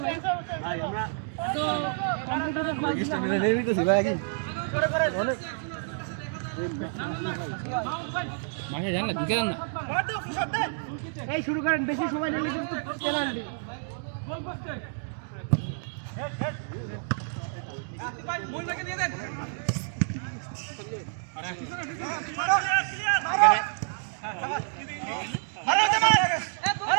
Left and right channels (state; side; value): silent; left; digital silence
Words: ভাই? ভাই আমরা তো কম্পিউটারের পাস রেজিস্টার নিয়ে নিতেছি ভাই আগে করে অনেক মাসে জান না ঢুকে যান না। এই শুরু করেন, বেশি সময় নিলে কিন্তু পেনাল্টি। গোল পোস্টে হেড হেড আসি ভাই, বল রেখে দিয়ে দেন।